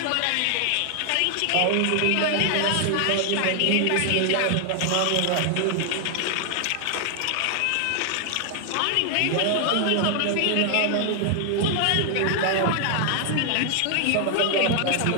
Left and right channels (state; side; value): different; both; correlation 0.00